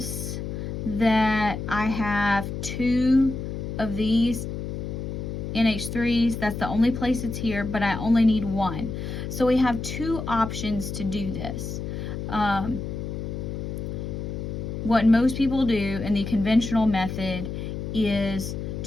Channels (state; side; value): noise; left; hum, 5 dB below the sound